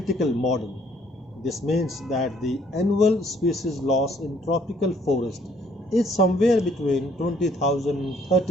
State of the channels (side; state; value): both; normal; correlation 0.63